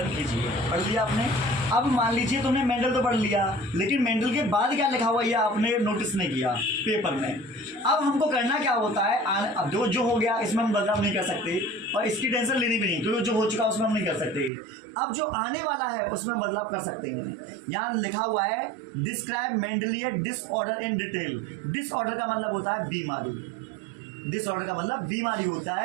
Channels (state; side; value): drops out; left; at 14.5 s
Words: कीजिए। पढ़ लिया आपने। अब मान लीजिए तुमने मेंडल तो पढ़ लिया, लेकिन मेंडल के बाद क्या लिखा हुआ ये आपने नोटिस नहीं किया पेपर में। अब हमको करना क्या होता है, अब जो हो गया इसमें हम बदलाव नहीं कर सकते और इसकी टेंशन लेनी भी नहीं, क्योंकि जो हो चुका उसमें हम नहीं कर सकते। अब जो आने वाला है उसमें बदलाव कर सकते हैं। यहाँ लिखा हुआ है describe Mendelian disorder in detail. Disorder का मतलब होता है बीमारी। डिसऑर्डर का मतलब बीमारी होता